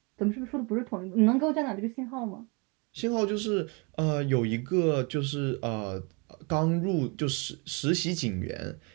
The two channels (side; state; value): left; quieter; 30.6 dB